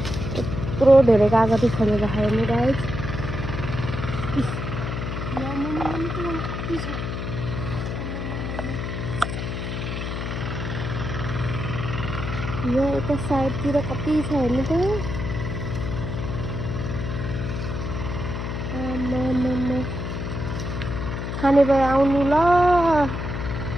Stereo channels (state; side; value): noise; left; hum, 4 dB below the sound